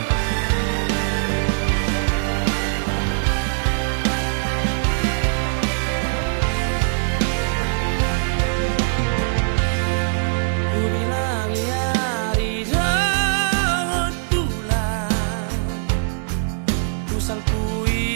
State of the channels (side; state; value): left; silent; 65 dB below the other